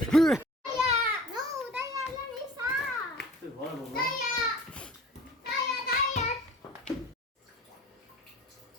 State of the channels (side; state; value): both; normal; correlation 0.44